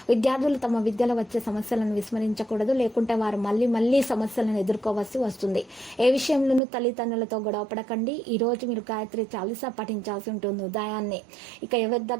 విద్యార్థులు తమ విద్యలో వచ్చే సమస్యలను విస్మరించకూడదు. లేకుంటే వారు మళ్ళీ సమస్యలను ఎదుర్కోవాల్సి వస్తుంది. ఏ విషయంలోనూ తల్లిదండ్రులతో గొడవపడకండి. ఈ రోజు మీరు గాయత్రి చాలీసా పఠించాల్సి ఉంటుంది ఉదయాన్నే. ఇక ఎవరి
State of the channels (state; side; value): drops out; left; at 6.6 s